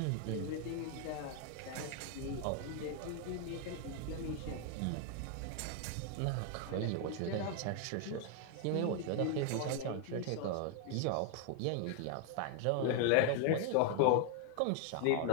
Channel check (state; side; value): different; both; correlation 0.00